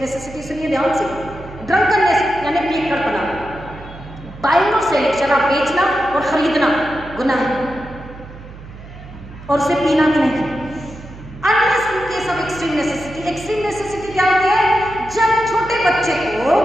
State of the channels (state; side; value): noise; right; hum, 16 dB below the sound